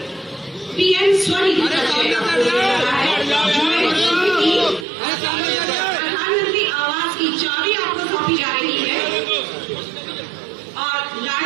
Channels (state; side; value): drops out; left; at 4.9 s